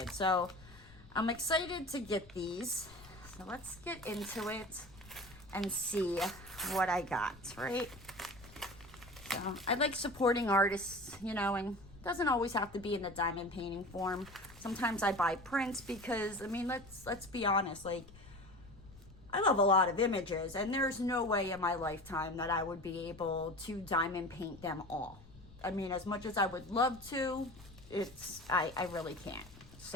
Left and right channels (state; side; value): noise; left; rumble, 20 dB below the sound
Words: So I'm excited to get these. So let's get into it and see what I got, right? So I like supporting artists, you know, and it doesn't always have to be in the diamond painting form. Sometimes I buy prints because, I mean, let's be honest, like, I love a lot of images, and there's no way in my lifetime that I would be able to diamond paint them all. I mean, as much as I would love to, I really can't.